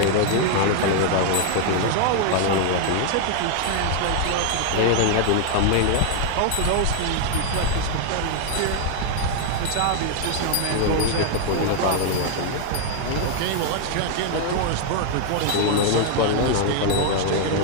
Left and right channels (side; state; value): both; different; correlation 0.00